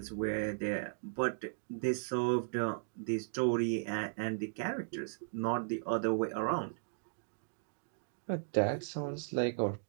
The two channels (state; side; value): silent; left; digital silence